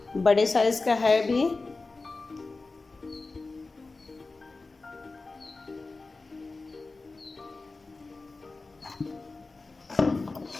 बड़े साइज़ का है भी।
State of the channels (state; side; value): quieter; right; 3.6 dB